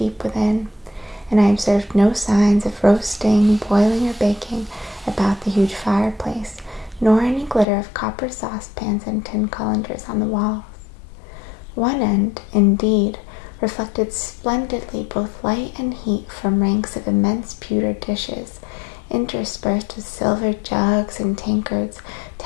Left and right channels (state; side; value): drops out; right; at 7.7 s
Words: within, and I observed no signs of roasting, boiling, or baking about the huge fireplace, nor any glitter of copper saucepans and tin colanders on the walls. One end, indeed, reflected splendidly both light and heat from ranks of immense pewter dishes, interspersed with silver jugs and tankards